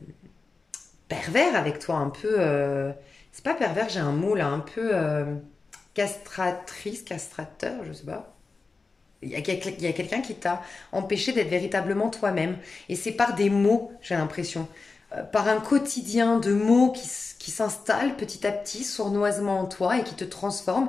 pervers avec toi, un peu... c'est pas pervers, j'ai un mot là, un peu castratrice, castrateur, je sais pas. Il y a quelqu'un qui t'a empêché d'être véritablement toi-même. Et c'est par des mots, j'ai l'impression. Par un quotidien de mots qui s'installe petit à petit, sournoisement en toi et qui te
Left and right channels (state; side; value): quieter; right; 4.1 dB